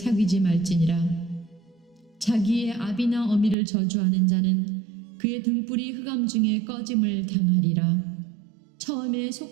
말지니라. 자기의 아비나 어미를 저주하는 자는 그의 등불이 흑암 중에 꺼짐을 당하리라. 처음에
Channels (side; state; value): left; drops out; at 3.6 s